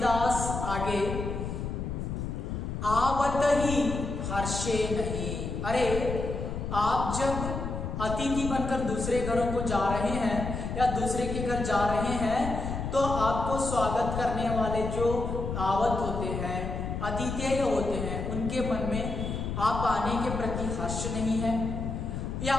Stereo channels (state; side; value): noise; left; rumble, 4 dB below the sound